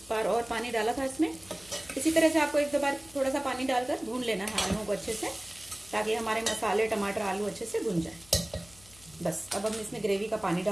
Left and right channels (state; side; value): noise; left; hum, 24 dB below the sound